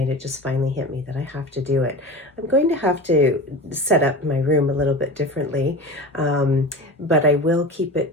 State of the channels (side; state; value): both; normal; correlation 0.31